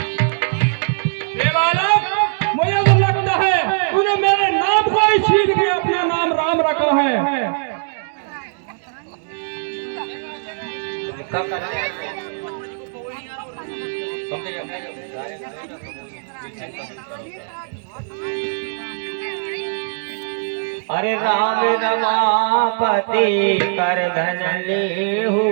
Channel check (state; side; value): silent; left; digital silence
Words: रे बालक, मुझे तो लगता है तूने मेरे नाम को ही छीन के अपना नाम राम रखा है। अरे राम रमापति कर धन लेहू,